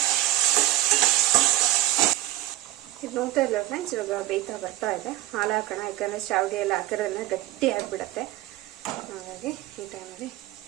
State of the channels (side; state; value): left; quieter; 15.1 dB